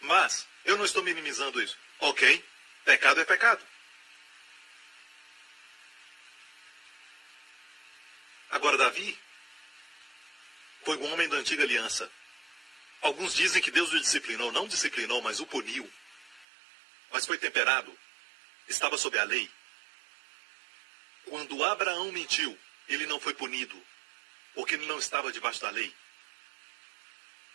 Mas eu não estou minimizando isso. Ok, pecado é pecado. Agora Davi foi um homem da antiga aliança. Alguns dizem que Deus o disciplinou. Não disciplinou, mas o puniu. Mas foi temperado. Estava sob a lei. Quando Abraão mentiu, ele não foi punido, porque ele não estava debaixo da lei.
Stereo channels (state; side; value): drops out; left; at 16.4 s